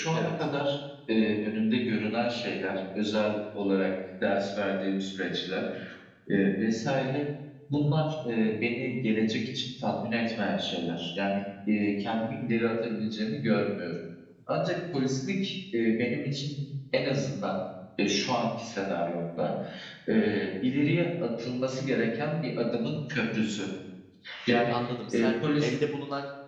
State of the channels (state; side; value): identical; both; correlation 1.00